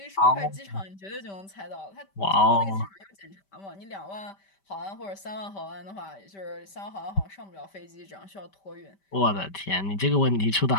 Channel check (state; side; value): late; right; 5.1 ms